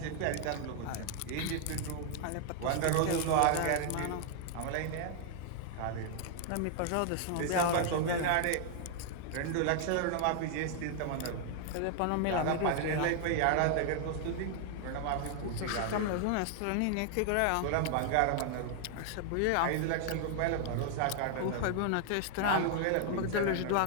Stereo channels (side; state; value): both; different; correlation 0.00